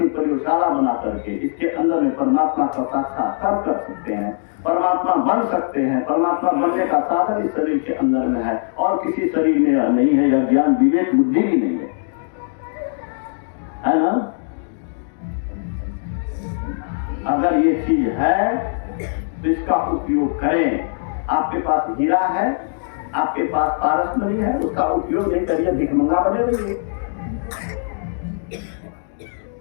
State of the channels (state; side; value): silent; right; digital silence